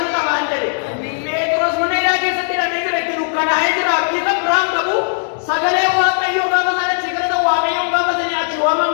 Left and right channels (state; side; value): silent; right; digital silence